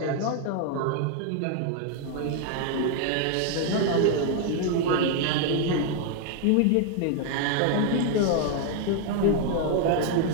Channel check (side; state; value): both; different; correlation 0.00